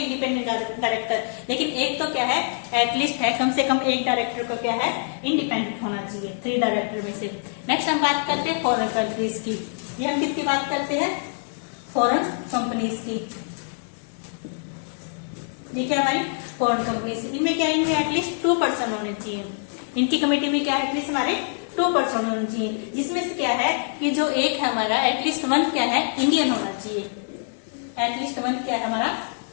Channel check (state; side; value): silent; right; 60 dB below the other